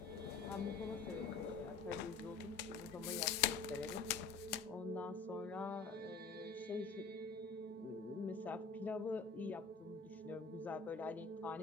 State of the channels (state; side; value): quieter; right; 4.9 dB